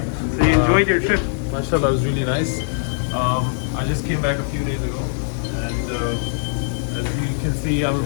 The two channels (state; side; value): silent; right; digital silence